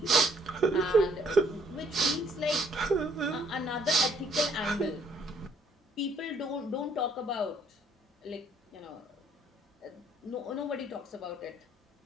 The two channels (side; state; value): both; normal; correlation 0.65